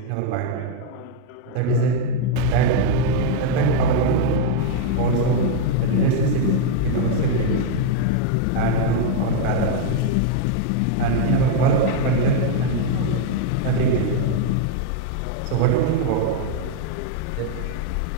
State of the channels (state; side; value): different; both; correlation 0.00